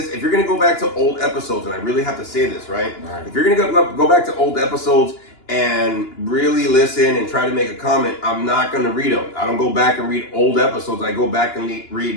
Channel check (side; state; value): right; late; 2.9 ms